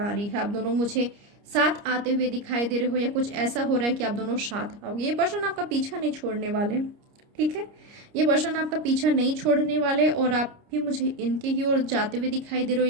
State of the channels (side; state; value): left; late; 29 ms